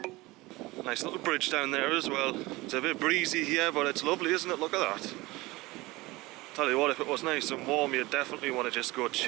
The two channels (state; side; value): quieter; left; 21.0 dB